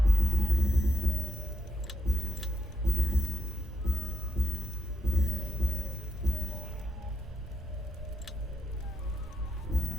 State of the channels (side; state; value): both; normal; correlation 0.84